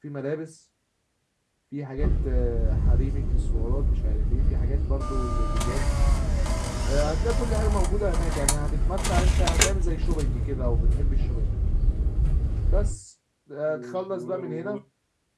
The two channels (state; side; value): identical; both; correlation 1.00